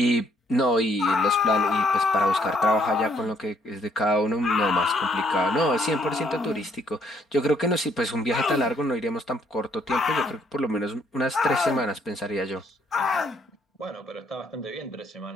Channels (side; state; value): both; normal; correlation 0.68